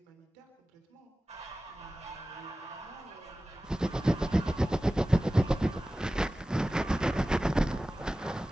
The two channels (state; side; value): normal; both; correlation 0.96